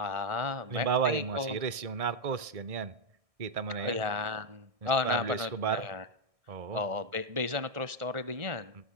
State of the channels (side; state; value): left; late; 1.6 ms